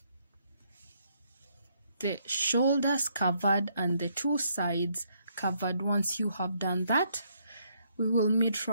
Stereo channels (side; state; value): both; inverted; correlation -0.72